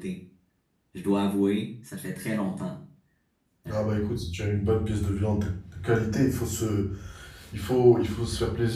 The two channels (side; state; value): both; identical; correlation 1.00